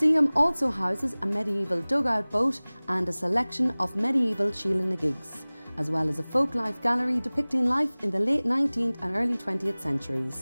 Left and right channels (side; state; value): both; inverted; correlation -1.00